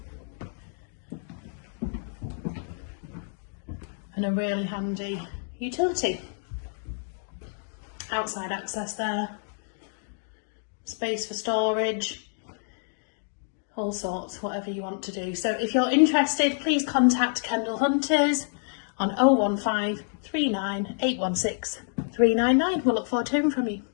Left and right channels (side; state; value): right; silent; digital silence